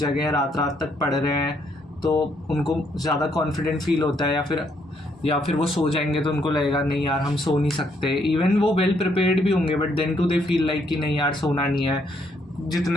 जगे हैं, रात रात तक पढ़ रहे हैं, तो उनको ज़्यादा कॉन्फिडेंट फील होता है, या फिर वो सो जाएंगे तो उनको लगेगा नहीं यार हम सो नहीं सकते. इवन वो वेल प्रिपेयर्ड भी होंगे but then too they feel like कि नहीं यार सोना नहीं है,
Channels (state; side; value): normal; both; correlation 0.72